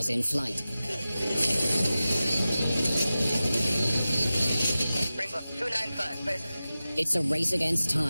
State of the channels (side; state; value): both; inverted; correlation -0.95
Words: in flight. Springbok 295, please. It's a race against